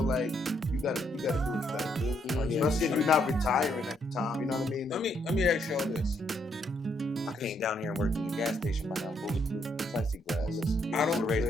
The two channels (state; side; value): normal; both; correlation 0.73